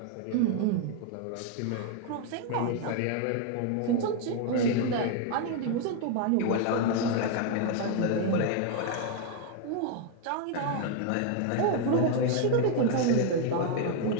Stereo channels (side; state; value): both; different; correlation 0.01